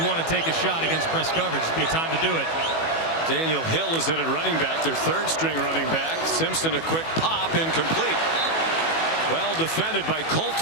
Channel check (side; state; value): right; late; 18 ms